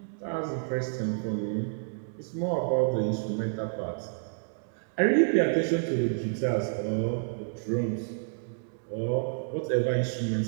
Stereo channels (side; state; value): left; silent; digital silence